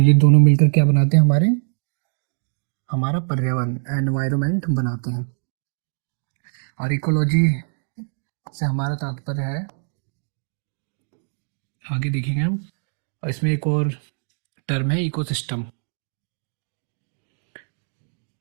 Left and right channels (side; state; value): left; silent; 56 dB below the other